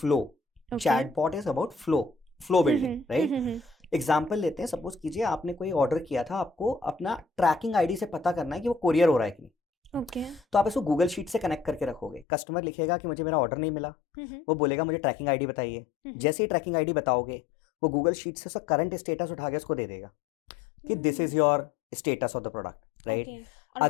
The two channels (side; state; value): right; drops out; at 12.2 s